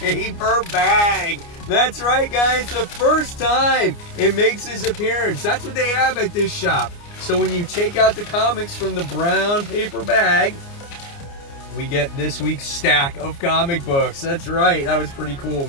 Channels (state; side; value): late; right; 29 ms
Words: bag. That's right, guys, the first time it makes its appearance. That's what they have at this shop. So when you take out the comics from the brown paper bag, we get this week's stack of comic books. That's right, that was pretty cool,